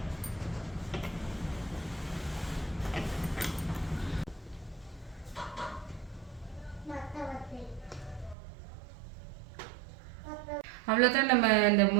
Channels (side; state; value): left; drops out; at 8.3 s